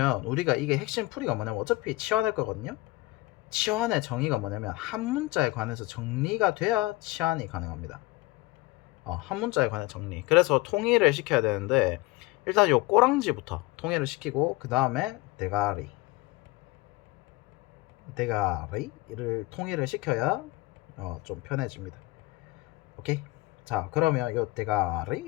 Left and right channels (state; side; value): quieter; right; 20.8 dB